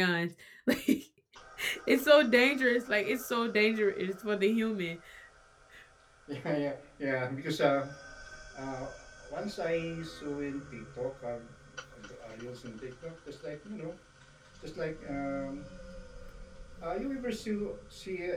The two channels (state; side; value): identical; both; correlation 1.00